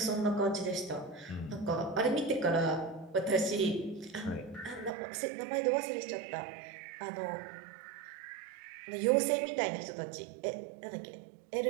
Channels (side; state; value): left; drops out; at 4.9 s